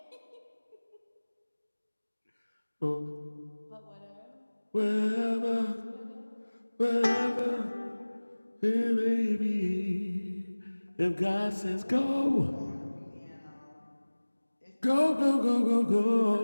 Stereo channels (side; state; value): both; inverted; correlation -1.00